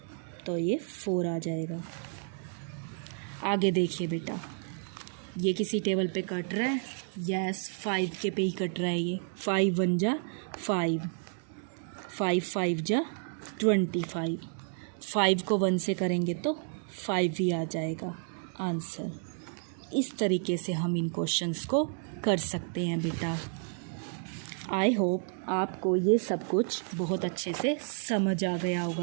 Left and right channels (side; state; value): left; silent; 57 dB below the other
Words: तो ये 4 आ जाएगा। आगे देखिए बेटा, ये किसी टेबल पे कट रहा है? यस, 5 के पे ही कट रहा है ये। 5 1 जा 5, 5 5 जा 25, 5 को 1 से करेंगे तो 5 ही आ जाएगा आंसर। इस तरीके से हम इन क्वेश्चंस को कर सकते हैं बेटा। आई होप आपको ये सब कुछ बहुत अच्छे से समझ आ गया